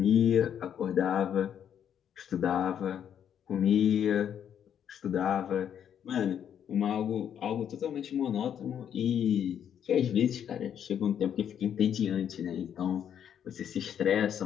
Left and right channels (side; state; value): right; quieter; 9.0 dB